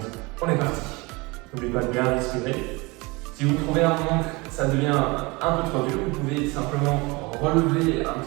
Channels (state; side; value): quieter; left; 25.2 dB